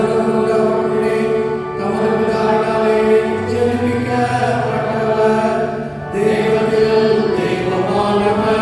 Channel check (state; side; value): identical; both; correlation 1.00